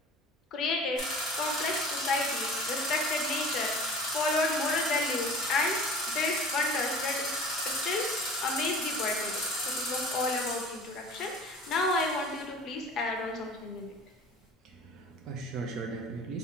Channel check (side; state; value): both; normal; correlation 0.42